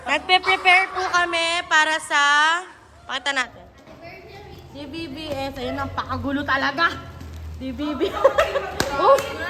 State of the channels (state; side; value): identical; both; correlation 1.00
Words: Nagpe-prepare po kami para sa pakita natin. DBBS, ayun ang pakagulo talaga. DBB. Oh.